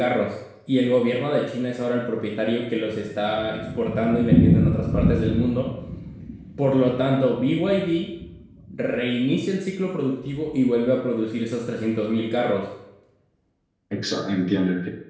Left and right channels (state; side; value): identical; both; correlation 1.00